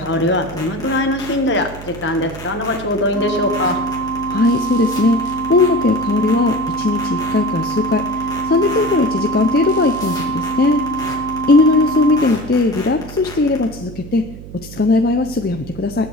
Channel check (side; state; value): right; noise; hum, 15 dB below the sound